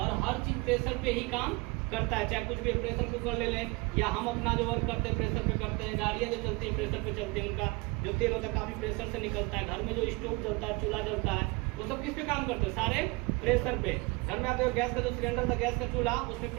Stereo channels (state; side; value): quieter; left; 26.0 dB